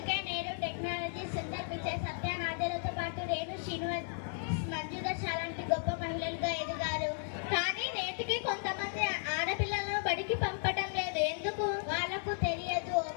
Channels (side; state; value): right; silent; digital silence